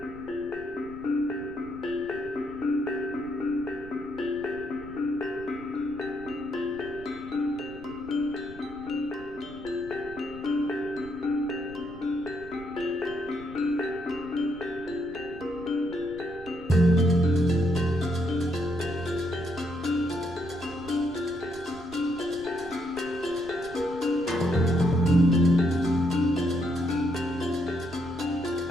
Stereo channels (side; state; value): right; noise; rumble, 18 dB below the sound